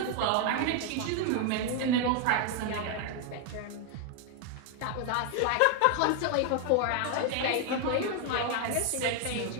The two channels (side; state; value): both; different; correlation 0.01